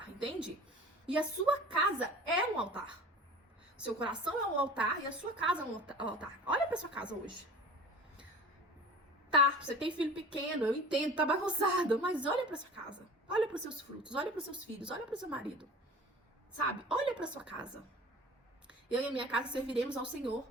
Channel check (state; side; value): normal; both; correlation 0.40